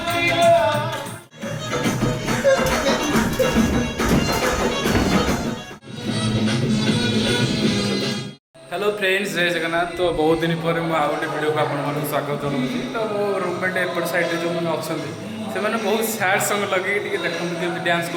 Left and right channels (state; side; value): identical; both; correlation 1.00